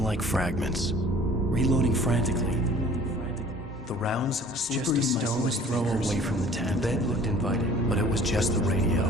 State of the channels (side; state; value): both; normal; correlation 0.50